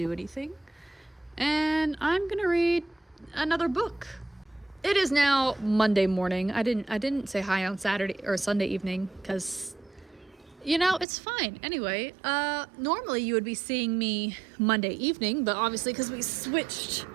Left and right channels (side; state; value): left; drops out; at 11.1 s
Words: anything. And I'm going to read another book. It is now Monday morning. I didn't say hi on Saturday or Sunday evening because, it's fine. Anyway, normally you would be seeing me Monday evening, but obviously because we switched